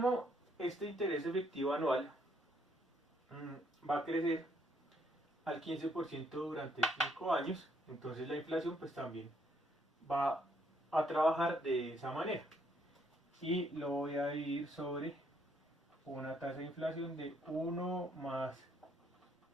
este interés efectivo anual va a crecer al 15% durante 5 años, entonces la inflación pues también va a trabajar de esa manera. Y lo voy a dividir sobre una tasa de inflación de 1 más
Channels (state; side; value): normal; both; correlation 0.70